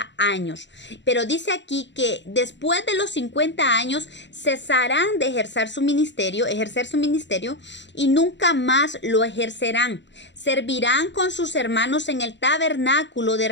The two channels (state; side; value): late; right; 0.52 ms